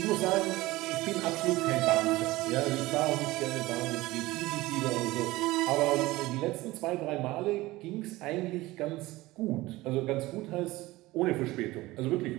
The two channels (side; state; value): left; quieter; 19.0 dB